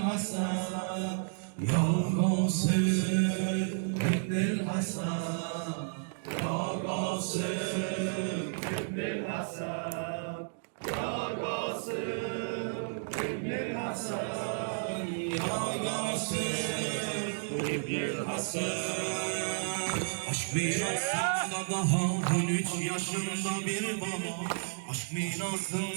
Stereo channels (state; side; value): silent; left; digital silence